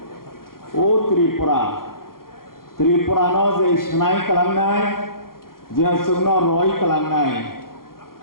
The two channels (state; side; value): late; right; 0.92 ms